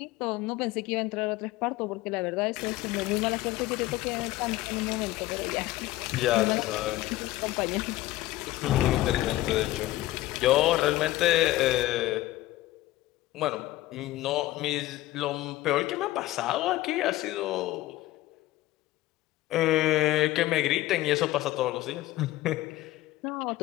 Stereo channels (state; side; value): quieter; right; 16.7 dB